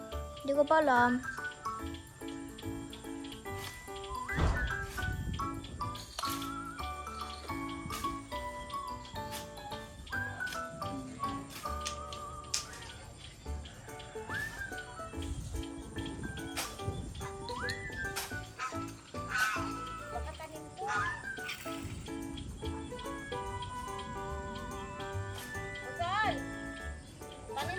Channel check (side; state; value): both; identical; correlation 1.00